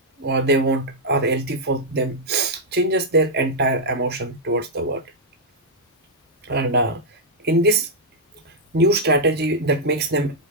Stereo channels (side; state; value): both; normal; correlation -0.05